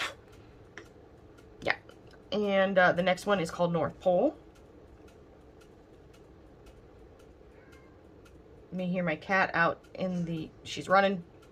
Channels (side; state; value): both; identical; correlation 1.00